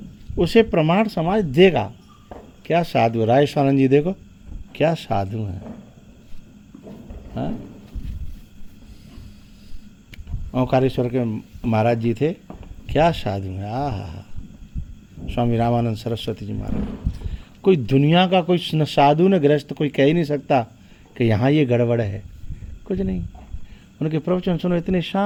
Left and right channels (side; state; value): both; identical; correlation 1.00